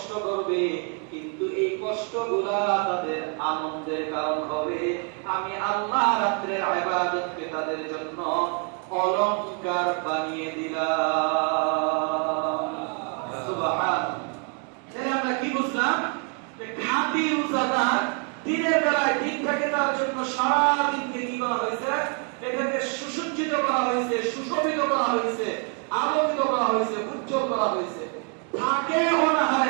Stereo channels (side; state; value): left; quieter; 39.0 dB